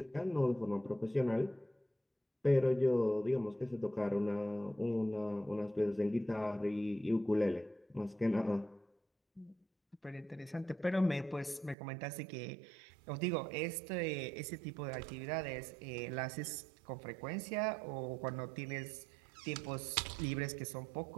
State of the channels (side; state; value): left; drops out; at 11.8 s